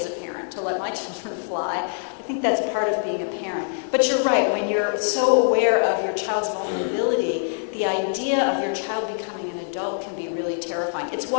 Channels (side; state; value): right; silent; 62 dB below the other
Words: a parent to let my children fly. I think that's part of being a parent. But you're right, when you're so aware of your child's vulnerability, the idea of your child becoming an adult can be really terrifying. It's